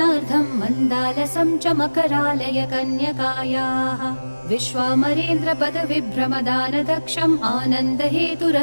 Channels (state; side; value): inverted; both; correlation -1.00